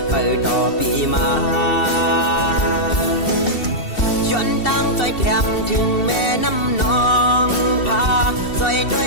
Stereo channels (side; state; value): right; late; 2.7 ms